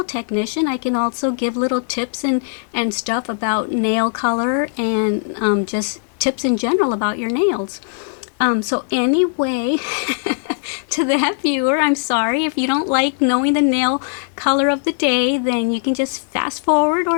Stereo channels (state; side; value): silent; right; digital silence